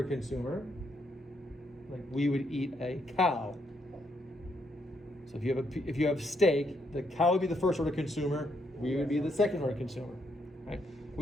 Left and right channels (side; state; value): both; normal; correlation 0.76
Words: consumer, like we would eat a cow. So if you have steak, the cow would be the first order consumer, we would be the second order consumer. Right?